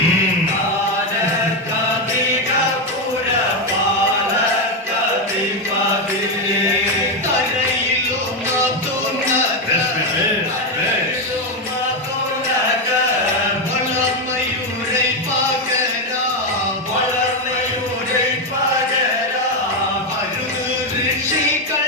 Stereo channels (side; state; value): both; normal; correlation 0.07